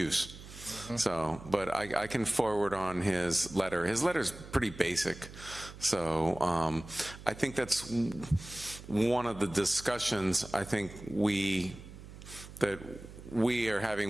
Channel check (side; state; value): right; noise; hum, 15 dB below the sound